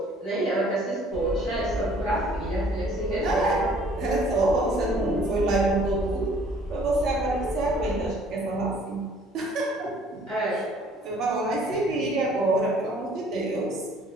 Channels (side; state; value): both; normal; correlation 0.57